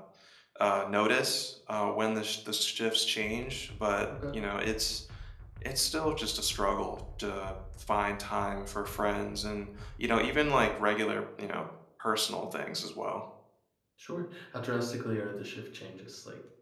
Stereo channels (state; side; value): identical; both; correlation 1.00